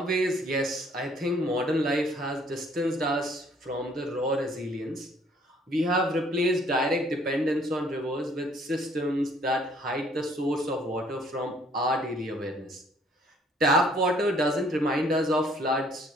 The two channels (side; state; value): both; normal; correlation 0.61